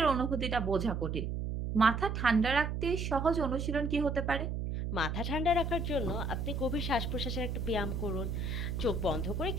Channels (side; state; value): right; noise; hum, 2 dB below the sound